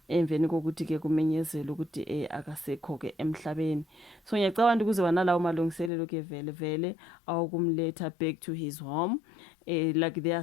emveni kokuthi ke kumenyezela ukuthi akasekho ke emhlabeni. So ngiyacabanga ukuthi kuzoba nalawo malungiselelo ke vele awukumletha back to his home, like they are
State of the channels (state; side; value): drops out; right; at 5.9 s